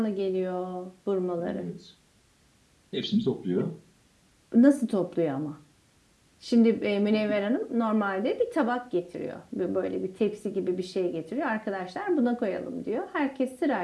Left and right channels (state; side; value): identical; both; correlation 1.00